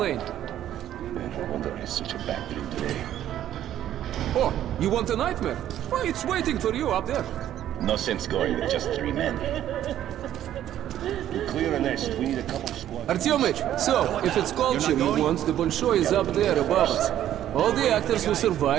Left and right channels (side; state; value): left; quieter; 11.7 dB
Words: No wonder it's such a bad dream today. Oh, you want a nightmare? Well, it's waiting for you up there. No sense going with just 3 men. To clear a nest, we need a couple of squads. Artyomich, so, if it's culture you want, the Bolshoi is up there above us. All the actors who